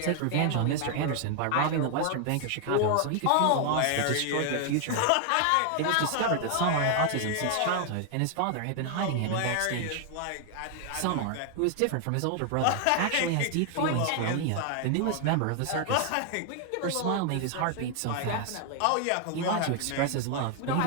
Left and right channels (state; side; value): different; both; correlation 0.00